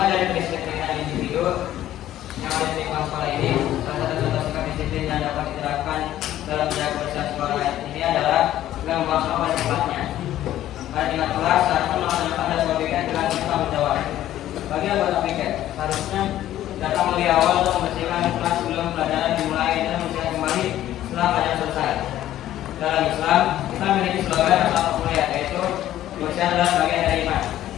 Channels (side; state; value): right; quieter; 13.0 dB